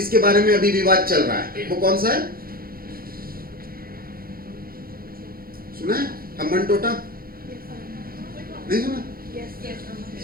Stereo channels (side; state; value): left; late; 0.43 ms